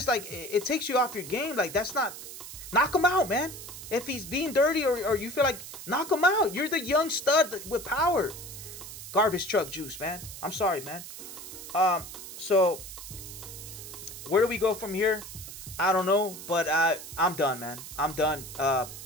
like, it takes you off your game. Like, that's not, knock him out, man. If he's being dirty, or you feel like, knock him out. You're the young stud with power. Garbage truck juice, man. I'm sorry, man. So where do we go from here? I don't know, but I'm done, man. I'm done. I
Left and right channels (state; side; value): noise; right; hiss, 12 dB below the sound